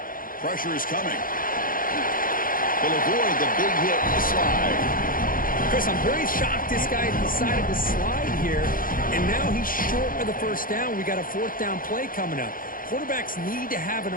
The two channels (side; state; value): right; late; 0.41 ms